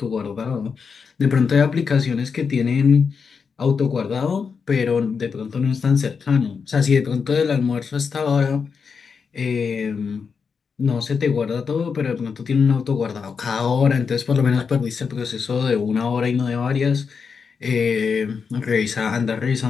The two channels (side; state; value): right; quieter; 5.7 dB